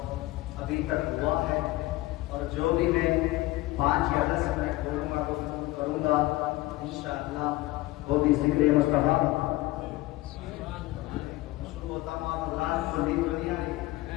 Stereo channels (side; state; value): right; quieter; 18.6 dB